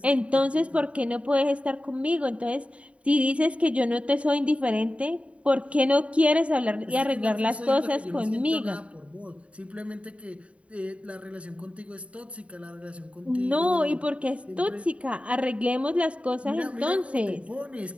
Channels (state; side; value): late; left; 0.064 ms